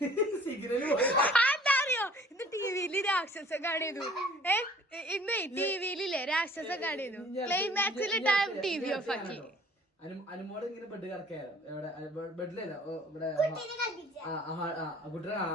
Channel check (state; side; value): normal; both; correlation 0.53